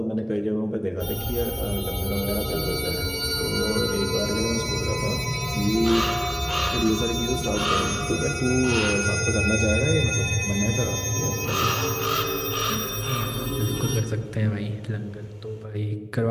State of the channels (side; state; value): both; identical; correlation 1.00